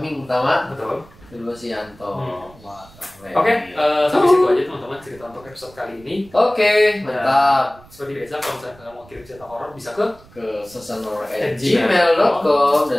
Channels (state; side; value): noise; right; rumble, 24 dB below the sound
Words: pertama. Betul. Kedua si Yanto. Oke, sampai situ aja teman-teman cerita untuk episode kali ini. Oke, mantap. Seperti biasa kalau misalnya kalian mau kirim cerita horor bisa ke sesanhorror@gmail.com